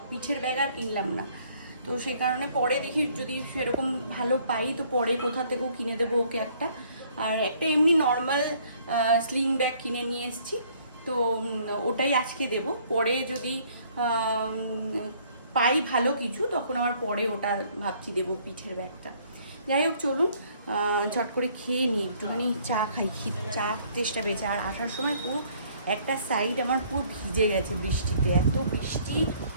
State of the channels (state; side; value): inverted; both; correlation -0.61